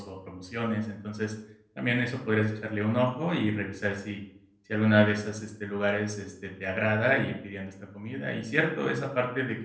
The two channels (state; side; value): identical; both; correlation 1.00